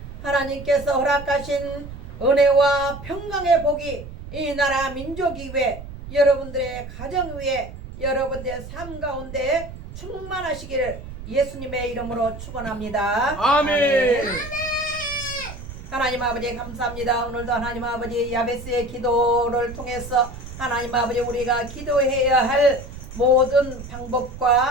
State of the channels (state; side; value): noise; right; rumble, 12 dB below the sound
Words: 하나님께서 허락하신 은혜와 평강의 복이 이 나라 민족 위에 여러분들의 가정 위에 여러분들의 삶 가운데 충만하시기를 예수님의 이름으로 축원합니다. 아멘. 하나님 아버지 감사합니다. 오늘도 하나님 아버지 야베스의 기도를 통해서 하나님 아버지 우리가 기도해야 할 모든